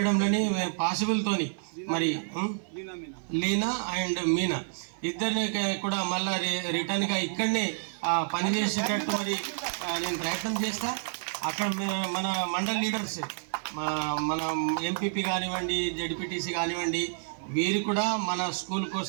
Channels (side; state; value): left; silent; 57 dB below the other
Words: పాసిబుల్తోని మరి లీనా అండ్ మీనా ఇద్దరిని కూడా మళ్ళా రిటర్న్గా ఇక్కడనే పనిచేసేటట్టు మరి నేను ప్రయత్నం చేస్తా. అక్కడ మన మండల్ లీడర్స్ మన ఎంపీపీ కానివ్వండి, జడ్పీటీసీ కానివ్వండి, వీరు కూడా మన స్కూల్